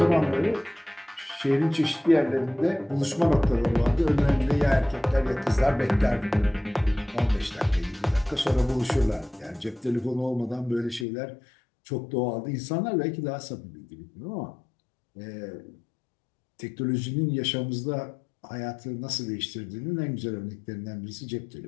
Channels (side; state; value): right; drops out; at 11.1 s